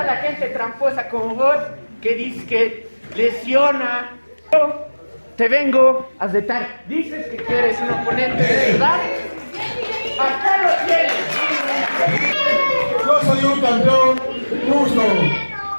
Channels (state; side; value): inverted; both; correlation -1.00